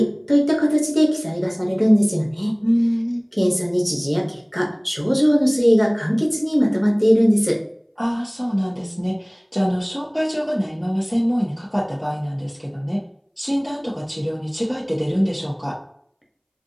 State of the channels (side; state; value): both; identical; correlation 1.00